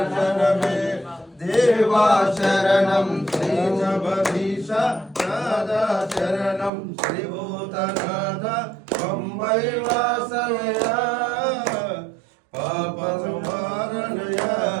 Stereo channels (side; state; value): left; drops out; at 6.7 s